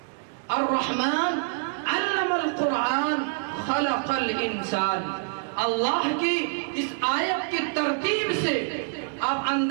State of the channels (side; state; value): left; silent; digital silence